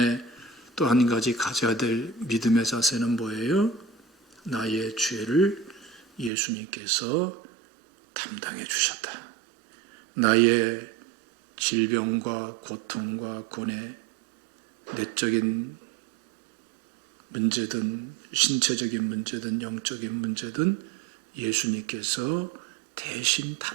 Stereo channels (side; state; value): left; drops out; at 6.3 s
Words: 또 한 가지 가져야 될 믿음의 자세는 뭐예요? 나의 죄를 예수님께서 담당해 주셨다. 나의 질병과 고통과 고뇌, 내적인 문제든 신체적인 문제든 영적인 문제든 예수님께서 대신